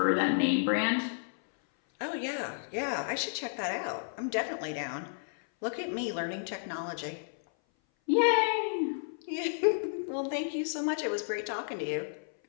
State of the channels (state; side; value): silent; right; 57 dB below the other